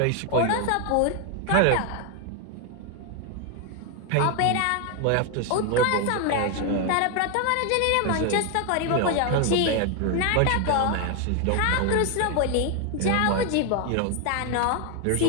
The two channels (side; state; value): both; different; correlation 0.01